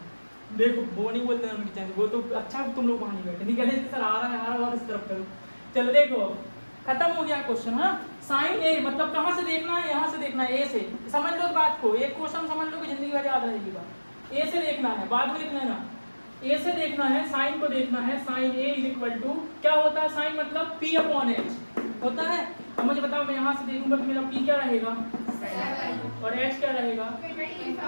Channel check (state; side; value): inverted; both; correlation -1.00